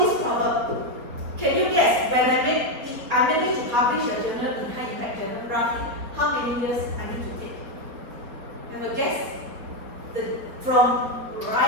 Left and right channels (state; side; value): late; left; 4.3 ms